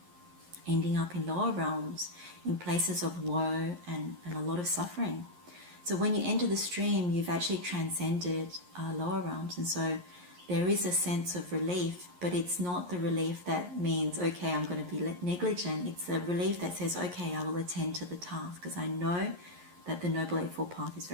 ending up in lower realms, in places of woe and a lot of suffering. So when you enter the stream, you've actually transcended lower realms. And so there is a sense of relief, but it's not the relief that means, okay, I'm going to be negligent. It's a relief that says, okay, I will attend to the task because I know that the Noble Eightfold Path is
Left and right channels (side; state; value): left; late; 11 ms